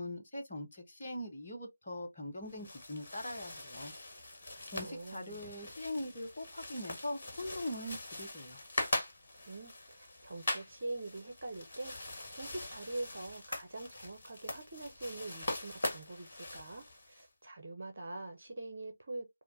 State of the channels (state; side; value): inverted; both; correlation -0.88